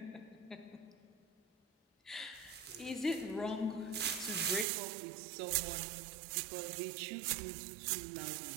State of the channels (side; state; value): left; drops out; at 4.7 s